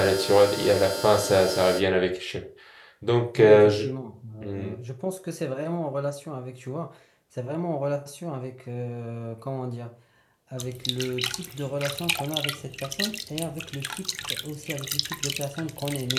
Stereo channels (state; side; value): identical; both; correlation 1.00